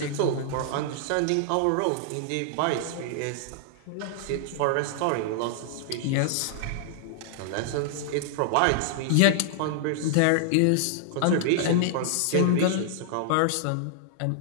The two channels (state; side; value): different; both; correlation -0.01